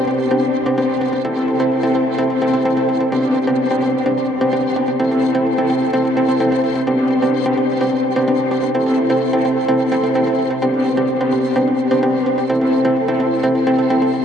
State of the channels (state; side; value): normal; both; correlation 0.70